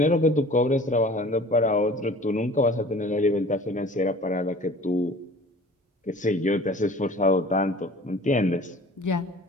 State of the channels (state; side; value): normal; both; correlation 0.46